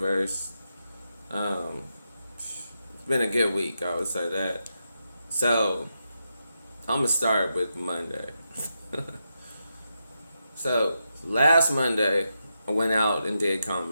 Um it's been a good week, I would say that. So I'm gonna start with Monday. So last Monday I went out and did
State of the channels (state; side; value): inverted; both; correlation -0.86